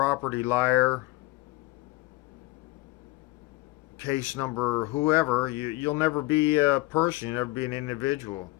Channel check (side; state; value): right; quieter; 20.4 dB